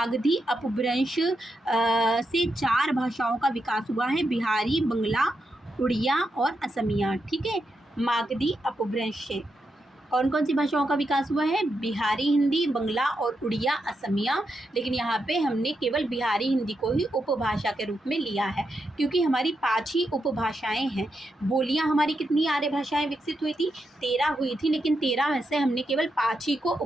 अपभ्रंश से 4 भाषाओं का विकास हुआ है, बिहारी, बंगला, उड़िया और असमिया, ठीक है, मागधी अपभ्रंश से। कौन कौन सी भाषाओं का विकास हुआ है? बिहारी हिंदी, बंगला और उड़िया, असमिया। लेकिन यहाँ पे हमने केवल बिहारी हिंदी को ही उपभाषा के रूप में लिया है, क्योंकि हमारी 5 ही उपभाषाएं हैं। बोलियाँ हमारी कितनी आर्य भाषाएं विकसित हुई थी? 13 हुई थी, लेकिन 13 में से हमने केवल 5 ही को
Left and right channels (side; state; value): both; normal; correlation 0.84